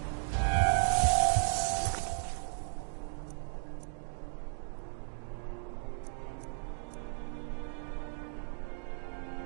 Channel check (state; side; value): silent; left; 54 dB below the other